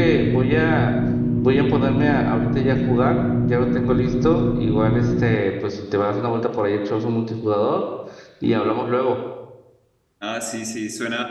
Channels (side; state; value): both; identical; correlation 1.00